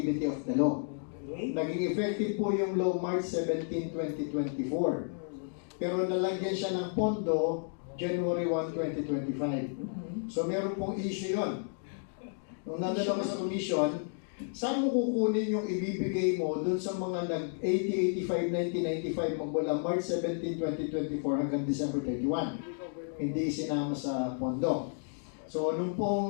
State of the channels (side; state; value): right; silent; digital silence